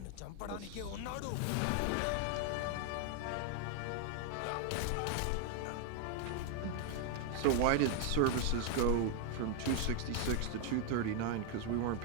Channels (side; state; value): both; different; correlation 0.00